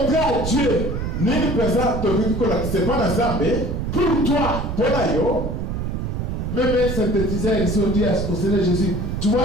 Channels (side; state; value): right; noise; rumble, 3 dB below the sound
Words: à Dieu pour toi? Même un synthétiseur ici, on dit au Seigneur Jésus, tu vois